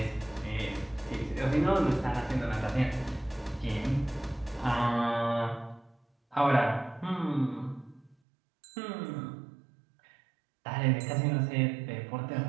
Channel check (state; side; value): drops out; left; at 8.2 s